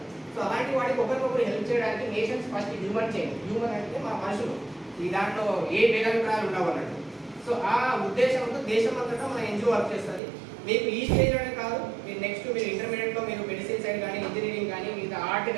సో అలాంటి వాటికి ఒకరికొకరు హెల్ప్ చేయడానికి nations first human chain. Human అంటే మన మనుషులు, ఈ దాంట్లో ఏ భేదాభిప్రాయాలు ఉండవు అన్నట్టు. సో ఆ ఉద్దేశంతో దేశం అంతటా మన ఎన్జిఓ వర్క్ చేస్తుంది. మీకు ఈ స్టేజ్లోనే కాదు, మీరు నెక్స్ట్ మీరు ఇంటర్మీడియట్లో మీరు మెడిసిన్ సైడ్ కానీ, ఇంజనీరింగ్ కానీ, మిగతా ఆర్ట్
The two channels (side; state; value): left; drops out; at 10.2 s